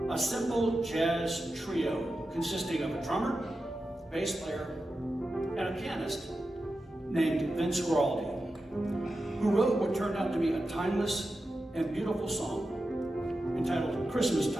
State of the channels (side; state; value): both; normal; correlation 0.91